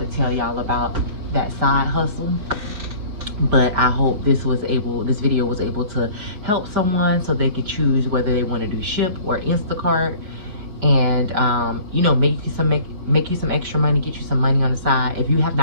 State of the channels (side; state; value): left; late; 5.0 ms